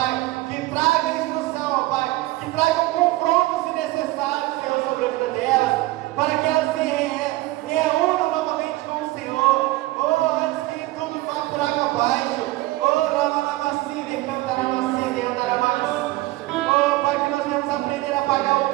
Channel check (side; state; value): left; quieter; 18.7 dB